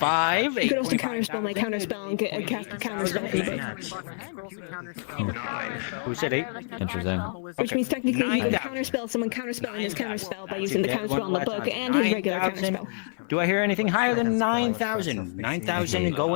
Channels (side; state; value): right; silent; digital silence